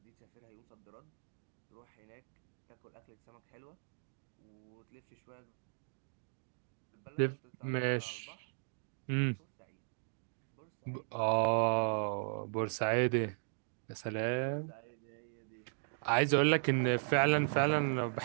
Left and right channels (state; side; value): silent; left; digital silence